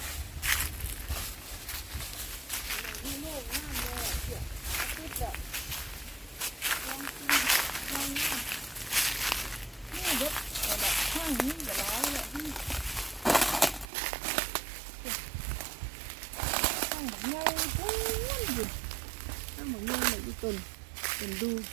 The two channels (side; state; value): left; drops out; at 13.9 s